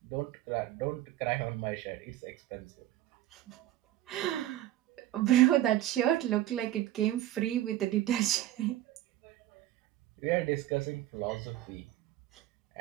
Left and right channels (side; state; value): left; quieter; 14.0 dB